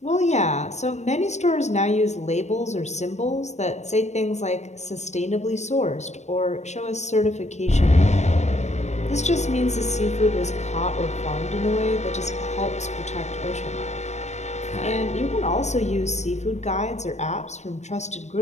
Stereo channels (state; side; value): late; right; 0.33 ms